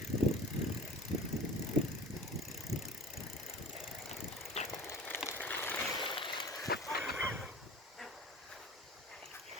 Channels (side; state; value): both; normal; correlation 0.39